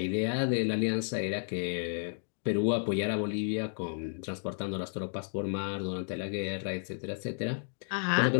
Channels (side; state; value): right; silent; digital silence